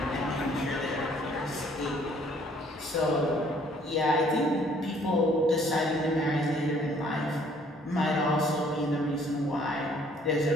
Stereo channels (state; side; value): normal; both; correlation 0.60